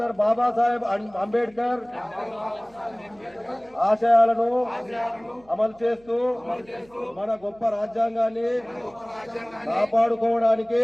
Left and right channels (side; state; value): right; noise; hum, 29 dB below the sound